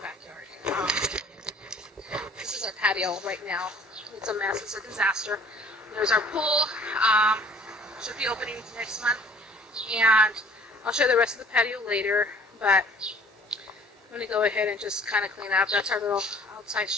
This is our patio right now. It's a mess. It's a disaster. There's our pool. Should be opening next month. And I'll show you the rest of the patio later. But I'm going to go ahead and just kind of clean up. That's our little outside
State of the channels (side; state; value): both; normal; correlation 0.53